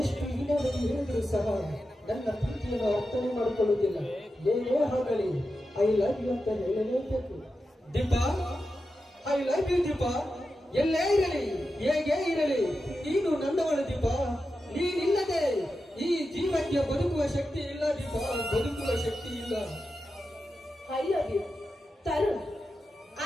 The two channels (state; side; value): normal; both; correlation 0.90